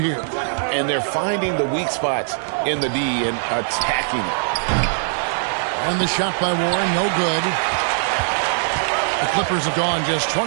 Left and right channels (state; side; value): silent; left; digital silence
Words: And they're finding the weak spots in the D and attacking it. And the shot by Warren, no good. The Clippers have gone just